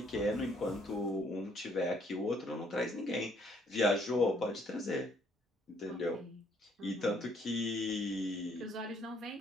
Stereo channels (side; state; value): both; normal; correlation 0.65